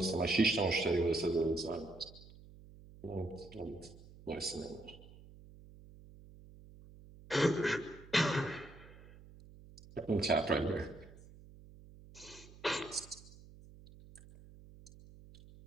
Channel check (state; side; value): noise; right; hum, 20 dB below the sound